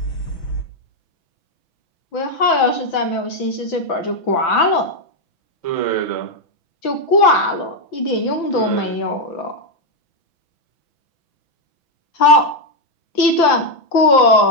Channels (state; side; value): late; right; 6.0 ms